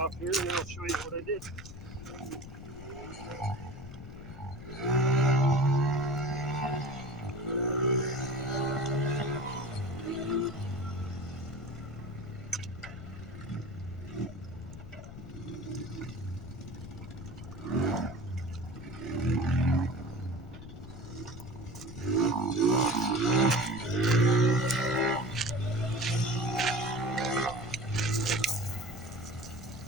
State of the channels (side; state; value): left; noise; rumble, 13 dB below the sound